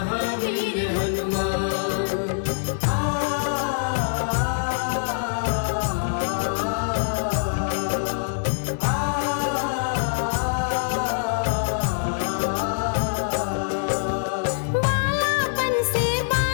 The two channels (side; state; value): right; silent; 58 dB below the other